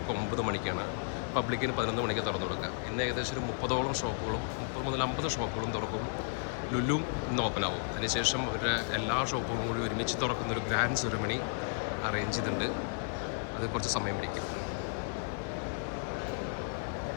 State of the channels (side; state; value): right; silent; digital silence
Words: 9 മണിക്കാണ്, പബ്ലിക്കിന് 11 മണിക്ക് തുറന്നു കൊടുക്കുക. ഇന്ന് ഏകദേശം ഒരു 30ഓളം ഷോപ്പുകളും 30 മുതൽ 50 ഷോപ്പുകളും തുറക്കും. ലുലും ഇന്ന് ഓപ്പൺ ആവും. അതിനുശേഷം അവരുടെ എല്ലാ ഷോപ്പുകളും കൂടി ഒരുമിച്ച് തുറക്കുന്നൊരു ഗ്രാൻഡ് സെറിമണി അറേഞ്ച് ചെയ്തിട്ടുണ്ട്. അത് കുറച്ച് സമയം പിടിക്കും.